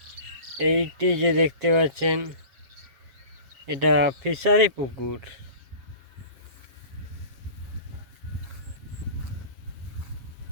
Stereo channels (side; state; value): left; late; 7.5 ms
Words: এইটি যে দেখতে পাচ্ছেন, এটা ফিশারি পুকুর।